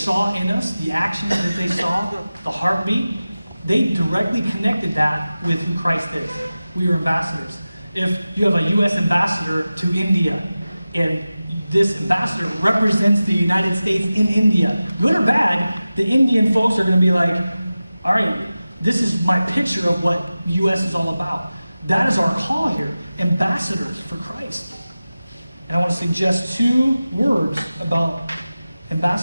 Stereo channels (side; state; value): both; inverted; correlation -0.95